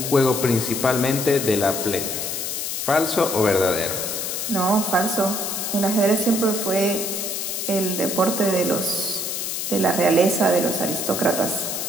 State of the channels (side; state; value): left; noise; hiss, 3 dB below the sound